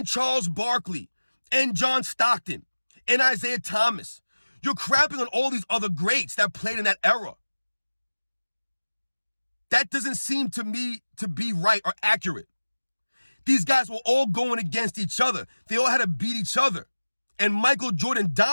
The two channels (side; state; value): both; inverted; correlation -1.00